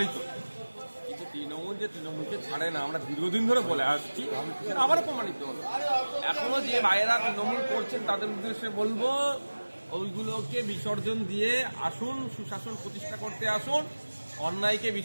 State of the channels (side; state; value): both; inverted; correlation -1.00